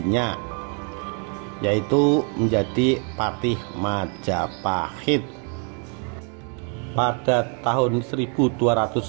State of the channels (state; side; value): quieter; left; 39.3 dB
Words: yaitu menjadi patih Majapahit. Pada tahun 1295,